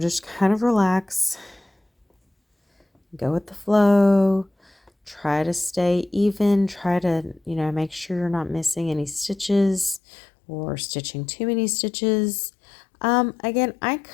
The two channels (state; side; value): drops out; right; at 10.0 s